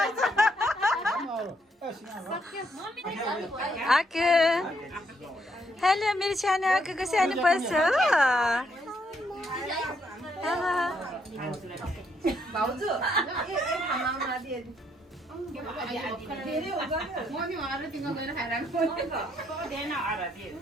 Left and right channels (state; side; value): normal; both; correlation 0.73